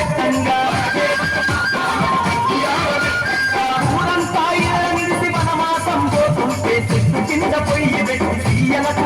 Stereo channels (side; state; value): both; identical; correlation 1.00